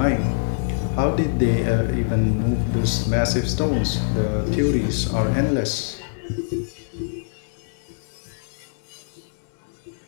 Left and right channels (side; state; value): right; silent; digital silence